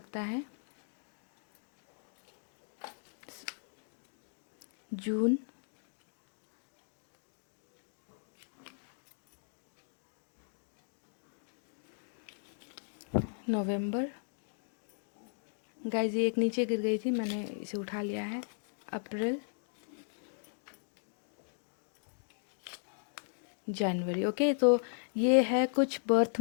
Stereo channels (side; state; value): right; silent; digital silence